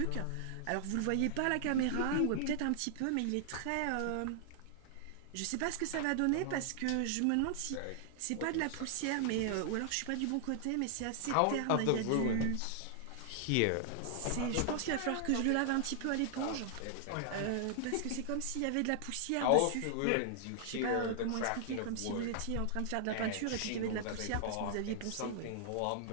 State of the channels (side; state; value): both; different; correlation -0.01